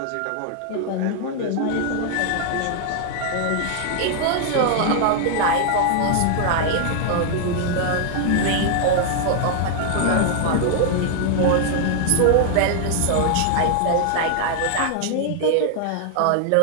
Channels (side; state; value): both; different; correlation 0.00